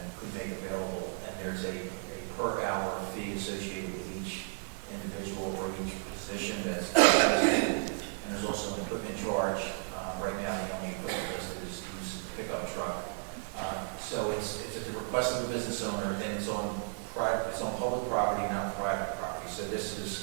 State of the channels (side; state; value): left; silent; 55 dB below the other